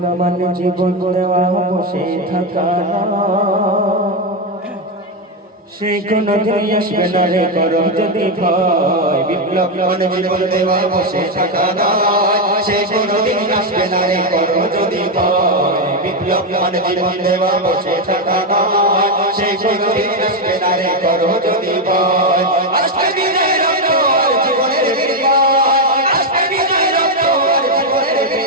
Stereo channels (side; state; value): both; normal; correlation 0.06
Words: মানে জীবন দেওয়া বসে থাকা সে কোনো দিন আসবে না রে করো যদি ভয় বিপ্লব মানে জীবন দেওয়া বসে থাকা সে কোনো দিন আসবে না রে করো যদি ভয় বিপ্লব মানে জীবন দেওয়া বসে থাকা সে কোনো দিন আসবে না রে করো যদি ভয় আসবে বিজয়ের রক্ত আর জীবনের বিজয় আসবে বিজয়ের রক্ত আর জীবনের